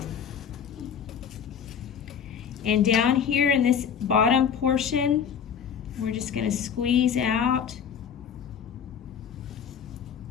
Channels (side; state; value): right; quieter; 7.6 dB